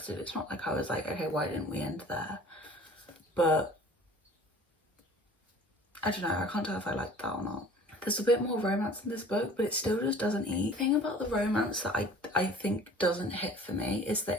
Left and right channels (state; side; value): normal; both; correlation 0.47